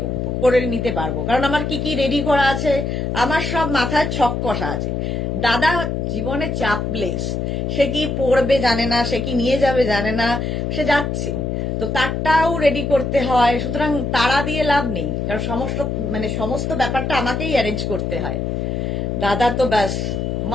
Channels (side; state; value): left; noise; hum, 1 dB below the sound